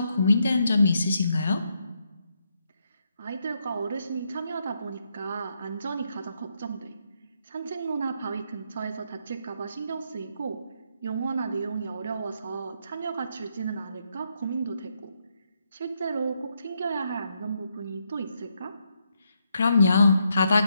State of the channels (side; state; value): both; inverted; correlation -0.79